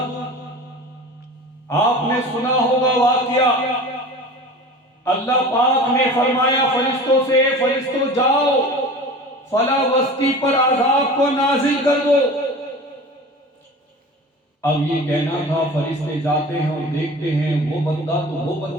آپ نے سنا ہوگا واقعہ، اللہ پاک نے فرمایا فرشتوں سے، فرشتوں جاؤ فلاں بستی پر عذاب کو نازل کر دو۔ اب یہ کہنا تھا فرشتے جاتے ہیں اور دیکھتے ہیں وہ بندہ تو وہ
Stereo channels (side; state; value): both; normal; correlation 0.37